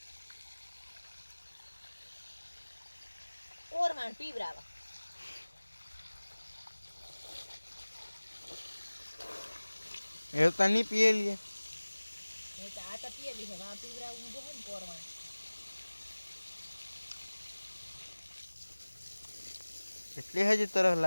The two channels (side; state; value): both; inverted; correlation -1.00